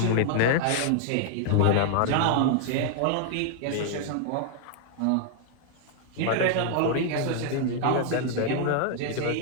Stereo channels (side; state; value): both; different; correlation 0.00